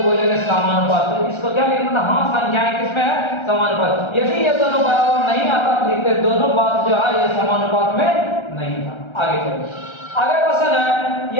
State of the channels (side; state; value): right; late; 1.3 ms